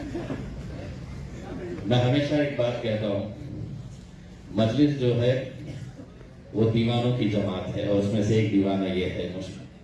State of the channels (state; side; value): identical; both; correlation 1.00